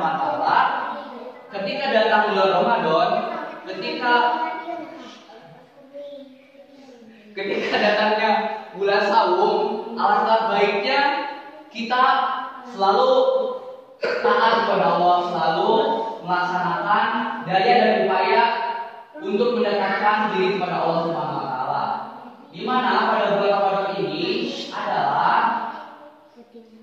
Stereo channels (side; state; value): both; identical; correlation 1.00